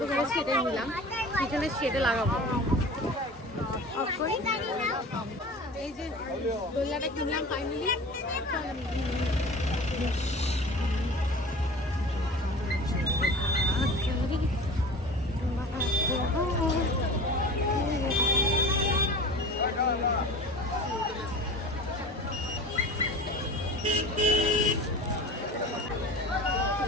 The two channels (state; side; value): normal; both; correlation 0.37